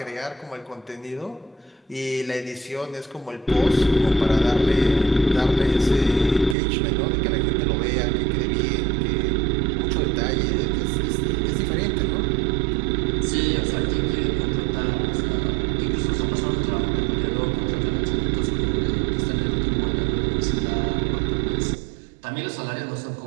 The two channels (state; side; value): drops out; left; at 6.6 s